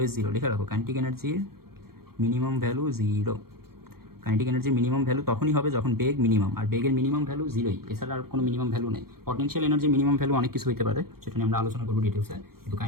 0, লিখে রাখো কাইনেটিক এনার্জির মিনিমাম ভ্যালু 0। কাইনেটিক এনার্জির মিনিমাম ভ্যালু তখনই হবে যখন বেগ মিনিমাম, আর বেগের মিনিমাম ভ্যালু জিরোই, এছাড়া আর কোনো মিনিমাম ভ্যালু নেই। পটেনশিয়াল এনার্জির মিনিমাম ভ্যালু অনেক কিছু হতে পারে, সেটা নিয়ে আমরা আলোচনা করবো ডিটেলসে, কিন্তু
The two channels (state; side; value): late; left; 0.94 ms